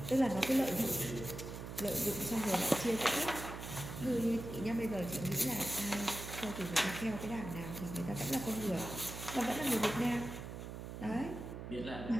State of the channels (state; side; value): noise; right; hum, 8 dB below the sound